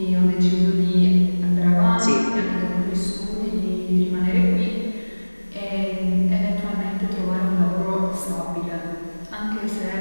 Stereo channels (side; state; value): both; inverted; correlation -1.00